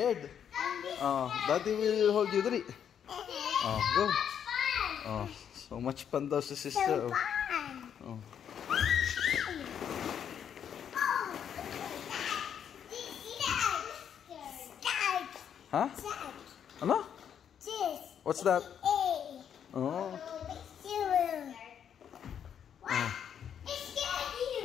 Oh, daddy will hold you. Dali. Oh, go. Oh, so much fun daw sa sister. Oh. Oh. Huh? Ano? What's that? Oh.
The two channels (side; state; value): right; quieter; 8.6 dB